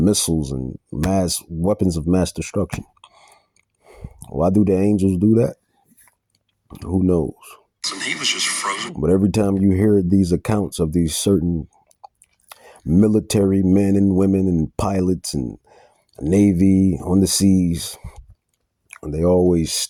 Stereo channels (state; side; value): identical; both; correlation 1.00